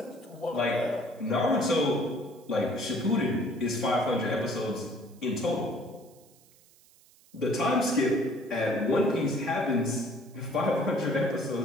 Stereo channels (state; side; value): noise; right; hiss, 28 dB below the sound